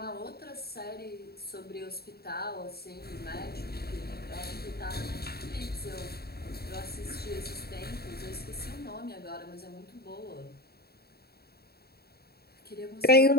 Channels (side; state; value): right; late; 0.46 ms